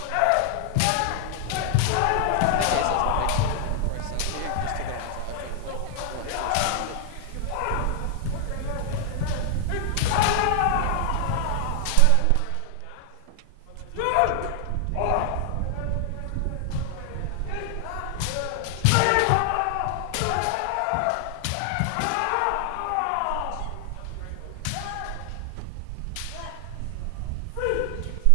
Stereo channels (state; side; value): different; both; correlation 0.00